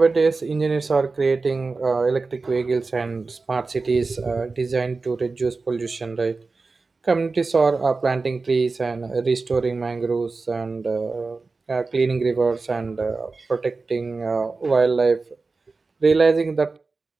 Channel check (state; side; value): quieter; left; 4.0 dB